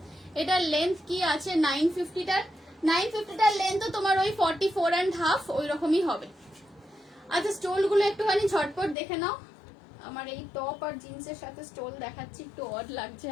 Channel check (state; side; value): drops out; right; at 9.0 s